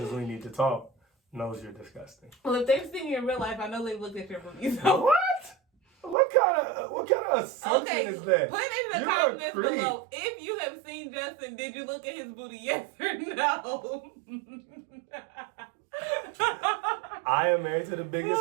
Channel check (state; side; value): drops out; left; at 6.2 s